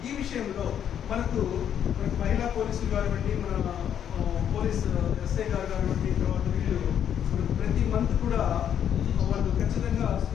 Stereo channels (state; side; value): quieter; right; 9.2 dB